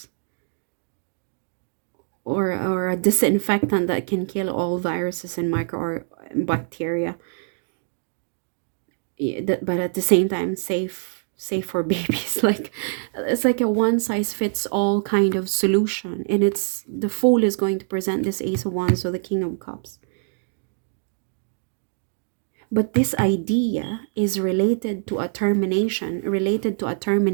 or a disinfectant that can kill all viruses and micro or bacteria. But at the same time safe for babies. Like it's like a one size fits all kind of solution, and it's the Fool is going to present this Ace of Wands, so the King of Cups. But this idea is related to a termination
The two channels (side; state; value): left; silent; digital silence